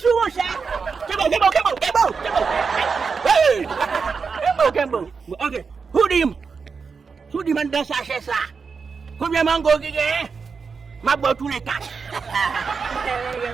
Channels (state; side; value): quieter; left; 5.3 dB